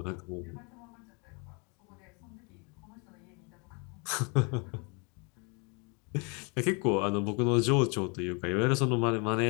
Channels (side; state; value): right; quieter; 32.6 dB